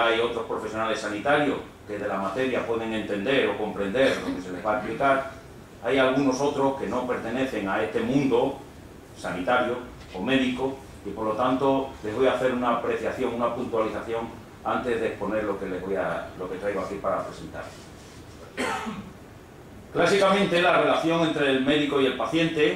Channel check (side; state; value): both; identical; correlation 1.00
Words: otros profesionales sanitarios que de la materia pueden entender o comprender lo que se les va a explicar, hay algunos otros que no pertenecen a este mundo sanitario o médico y por lo tanto les voy a hacer una apreciación, una puntualización antes de exponer lo que traigo aquí para presentar. Clásicamente la relación entre el médico y el